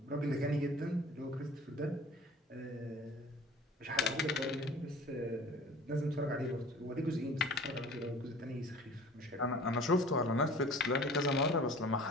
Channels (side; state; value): both; normal; correlation 0.45